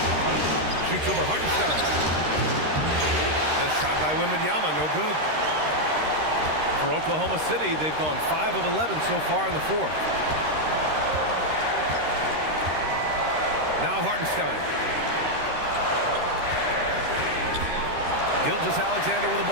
Shoots over Hardenstein. The shot by Wembanyama, no good. For Oklahoma City, they've gone 5 of 11 so far in the 4th. Now Hardenstein. Gilgeous-Alexander with the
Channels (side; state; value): left; late; 13 ms